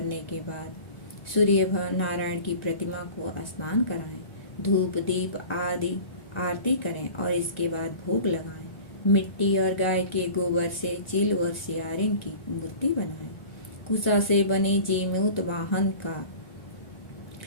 के बाद सूर्य नारायण की प्रतिमा को स्नान कराएं, धूप दीप आदि आरती करें और इसके बाद भोग लगाएं। मिट्टी और गाय के गोबर से चील और सियारिन की मूर्ति बनाएं। कुसा से बने जीमूत वाहन का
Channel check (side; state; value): right; late; 1.4 ms